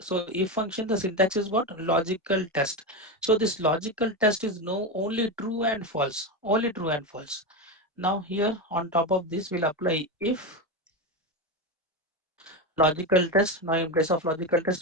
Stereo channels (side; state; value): both; normal; correlation 0.15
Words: if function, the syntax is what? Logical test. So this logical test is no only true and false, only true and false. Now here on top of this, we'll apply if logical test. Now in place of logical